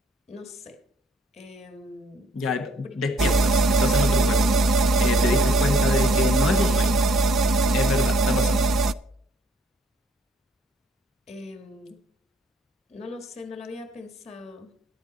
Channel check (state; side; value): normal; both; correlation 0.64